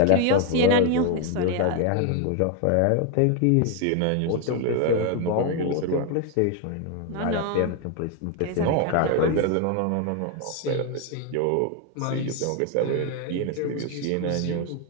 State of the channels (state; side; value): different; both; correlation 0.01